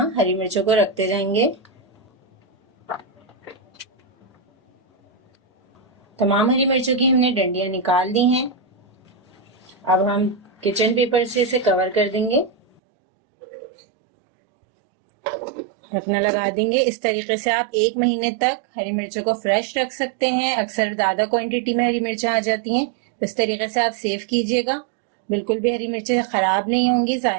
हरी मिर्चों को रखते जाएंगे। तमाम हरी मिर्चों की हमने डंडियां निकाल दी हैं। अब हम किचन पेपर से इसे कवर कर देंगे, ढकना लगा देंगे। इस तरीके से आप एक महीने तक हरी मिर्चों को फ्रेश रख सकते हैं। अक्सर ज्यादा क्वांटिटी में हरी मिर्चें आ जाती हैं, तो इस तरीके से आप सेव कीजिएगा। बिल्कुल भी हरी मिर्चें खराब नहीं होंगी,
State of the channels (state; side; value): drops out; left; at 12.8 s